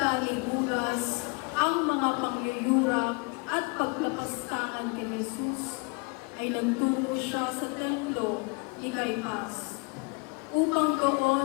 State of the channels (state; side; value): quieter; right; 30.5 dB